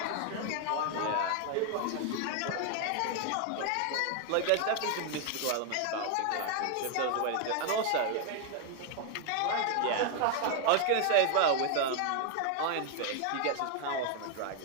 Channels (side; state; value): both; different; correlation 0.00